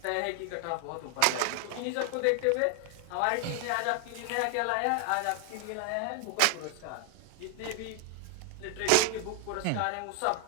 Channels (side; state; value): both; different; correlation 0.00